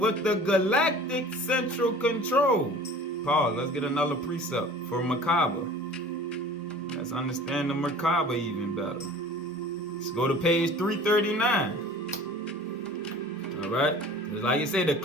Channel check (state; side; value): normal; both; correlation 0.44